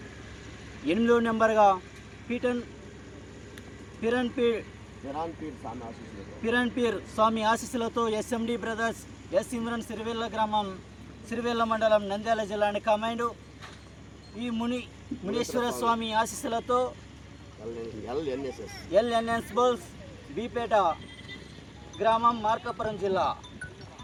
8వ నెంబర్గా పిరన్పీర్ స్వామి ఆశీస్సులతో SMD brothers, S Imran, Sirivella గ్రామం, సిరివెల్ల మండలం, నంద్యాల జిల్లా కమాండ్. ఈ మునీశ్వర స్వామి ఆశీస్సులతో ఎల్ఎన్ఎస్ బోల్స్, బీపేట గ్రామం, మార్కాపురం జిల్లా.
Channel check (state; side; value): identical; both; correlation 1.00